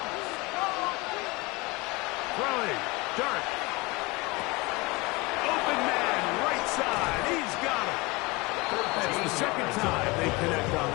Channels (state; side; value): quieter; right; 24.7 dB